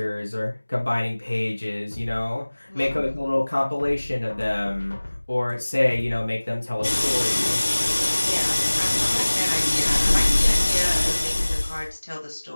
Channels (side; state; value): both; inverted; correlation -1.00